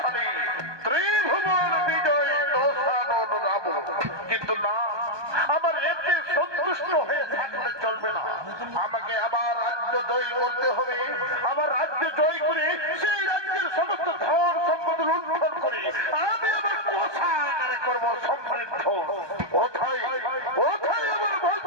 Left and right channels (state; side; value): late; left; 1.2 ms